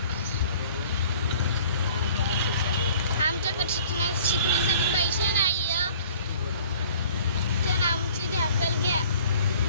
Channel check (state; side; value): inverted; both; correlation -0.51